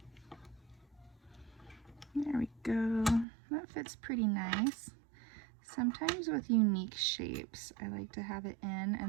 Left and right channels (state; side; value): drops out; left; at 3.2 s